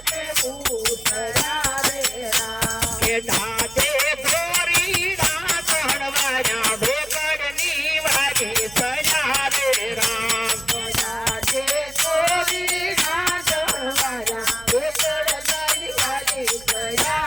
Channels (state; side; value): noise; right; hum, 20 dB below the sound